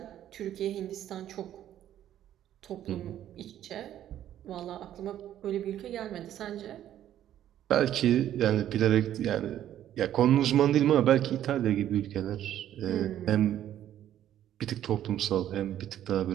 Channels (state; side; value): quieter; left; 11.5 dB